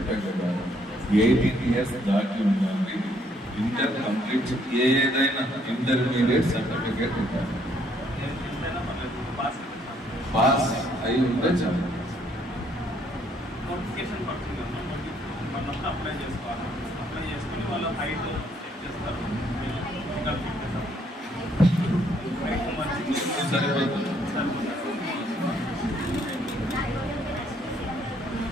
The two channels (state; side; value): normal; both; correlation 0.67